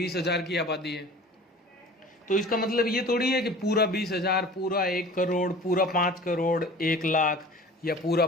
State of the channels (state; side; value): normal; both; correlation 0.42